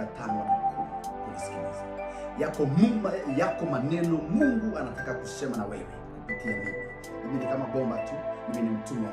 5 hadi 10 kunisikiliza. Yako maneno Mungu anataka kusema na wewe kupitia mimi. Mimi ni kama bomba tu, mimi ni mtumwa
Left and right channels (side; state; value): both; identical; correlation 1.00